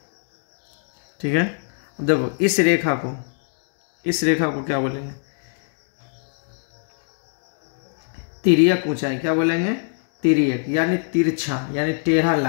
ठीक है। अब देखो, इस रेखा को क्या बोलेंगे? तिर्यक ऊंचाई। क्या बोलेंगे? तिर्यक, यानी तिरछा, यानी टेढ़ा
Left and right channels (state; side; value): silent; right; 63 dB below the other